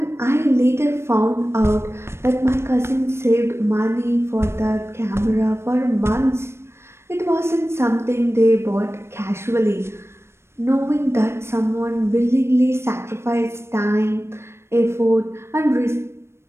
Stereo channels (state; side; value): late; left; 0.12 ms